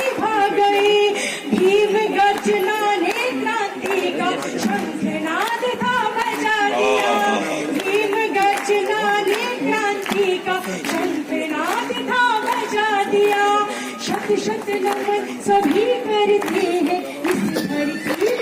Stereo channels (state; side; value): identical; both; correlation 1.00